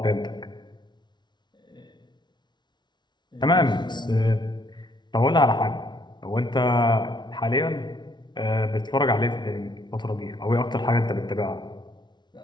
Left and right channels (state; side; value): late; right; 0.21 ms